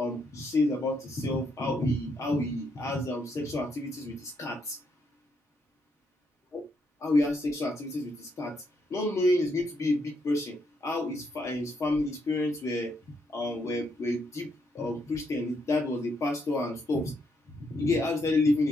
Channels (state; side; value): normal; both; correlation 0.76